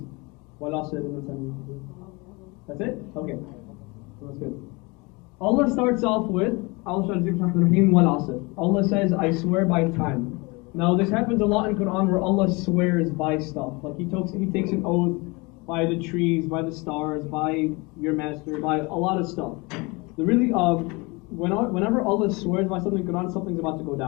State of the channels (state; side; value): quieter; right; 26.4 dB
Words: That's it? Okay. That's good. Allah starts off with, Allah says, I swear by time. Now this happens a lot in Quran where Allah swears by stuff. Like He takes an oath by the trees, by the stars, by your master, by a lot of stuff. Whenever Allah swears by something in Quran, something's about to go